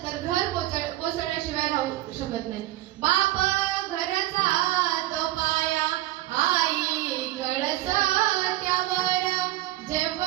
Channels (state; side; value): quieter; left; 16.5 dB